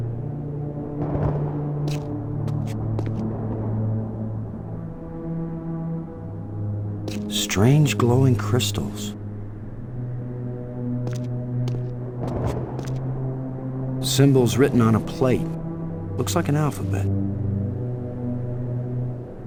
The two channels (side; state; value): both; identical; correlation 1.00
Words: Strange glowing crystals. Symbols written on a plate. Looks like an alphabet.